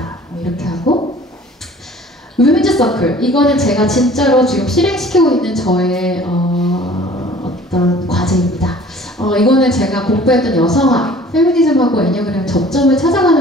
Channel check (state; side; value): normal; both; correlation 0.49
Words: 이렇게 하고, 위men즈 서클. 이거는 제가 진짜로 지금 실행시키고 있는 저의 어떤 과제입니다. 이거는 제가 공부했던 여성학, 페미니즘하고 애니어그램 접점을